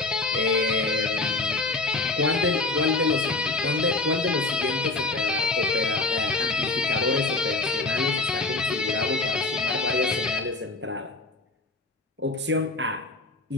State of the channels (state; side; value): quieter; right; 3.2 dB